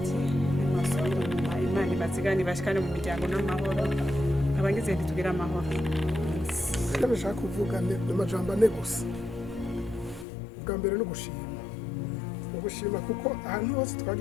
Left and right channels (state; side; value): drops out; right; at 10.2 s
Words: nimasubire inyuma imana ibazigane bashikane mu miryango n'amahoro abagize ntitugira amahoro icyo bashaka kuvuga ni amajambo ane gusa ubwa mbere ni ugushima kuko ahantu hose